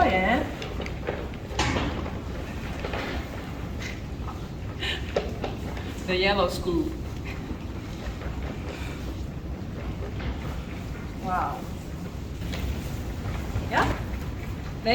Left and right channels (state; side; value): identical; both; correlation 1.00